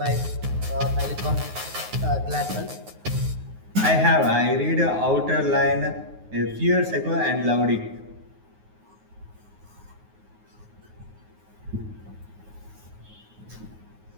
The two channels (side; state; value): left; late; 9.5 ms